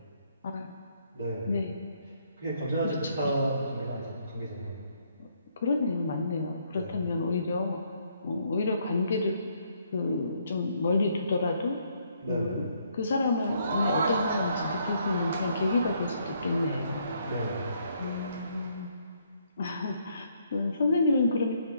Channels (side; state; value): both; inverted; correlation -0.71